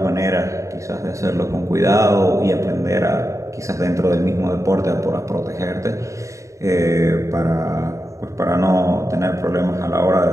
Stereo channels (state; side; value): late; left; 0.15 ms